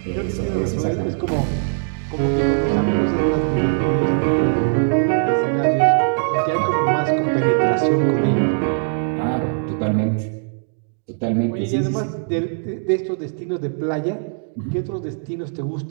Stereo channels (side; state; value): left; silent; digital silence